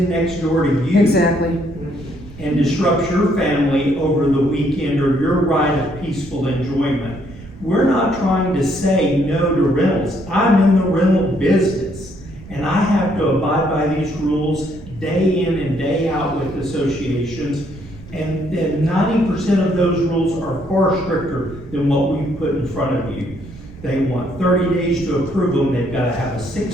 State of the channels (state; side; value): noise; right; rumble, 17 dB below the sound